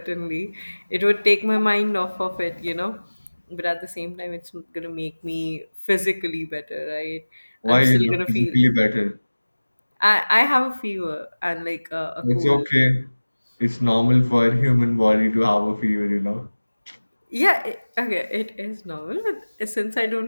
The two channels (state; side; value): inverted; both; correlation -1.00